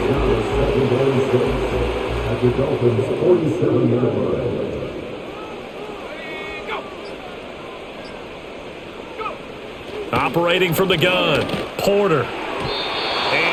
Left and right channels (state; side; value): identical; both; correlation 1.00